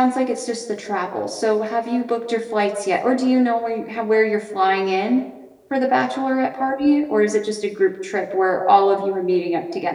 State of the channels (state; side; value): identical; both; correlation 1.00